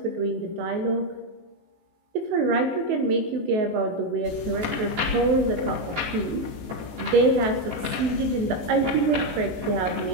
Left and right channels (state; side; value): late; left; 19 ms